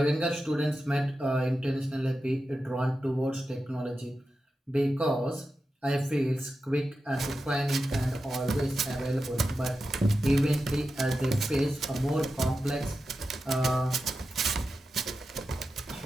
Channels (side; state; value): both; normal; correlation 0.91